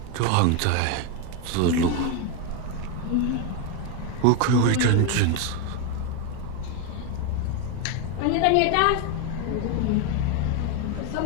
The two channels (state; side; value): different; both; correlation 0.02